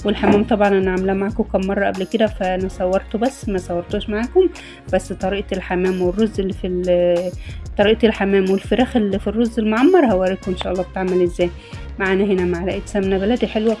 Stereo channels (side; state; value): both; identical; correlation 1.00